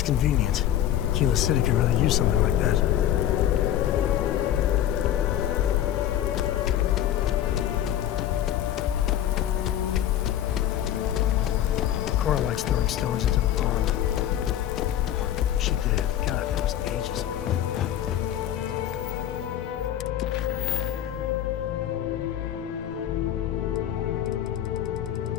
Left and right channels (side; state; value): right; quieter; 11.5 dB